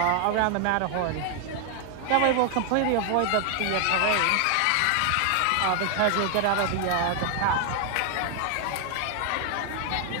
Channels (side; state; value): both; different; correlation 0.00